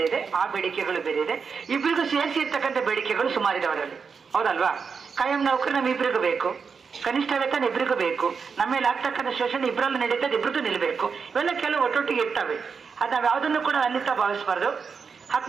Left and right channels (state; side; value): quieter; left; 5.7 dB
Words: ಇದೆ, ಆ ಬೇಡಿಕೆಗಳು ಬೇರೆ ಇದೆ. ಇಬ್ಬರಿಗೂ ಸೇರಿಸಿ ಇರ್ತಕ್ಕಂಥ ಬೇಡಿಕೆಗಳು ಸುಮಾರಿದೆ ಅವರಲ್ಲಿ, ಹೌದಲ್ವಾ? ಕಾಯಂ ನೌಕರು ನಮ್ಮ ಇಬ್ಬರಿಗೂ ಬೇಕು, ಕನಿಷ್ಠ ವೇತನ ಇಬ್ಬರಿಗೂ ಬೇಕು, ನಮ್ಮ ಮೇಲೆ ಆಗ್ತಕ್ಕಂಥ ಶೋಷಣೆ ಇಬ್ಬರಲ್ಲೂ ನಡೀತದೆ, ಇಬ್ಬರಿಗೂ ನಿಲ್ಲಬೇಕು. ಇವೆಲ್ಲ ಕೆಲವು ಒಟ್ಟೊಟ್ಟಿಗೆ ಇರ್ತವೆ. ಅದು ನಾವು ಯಾವುದನ್ನು ಕೂಡ ಅನ್ಯತಾ ಭಾವಿಸಬಾರ್ದು.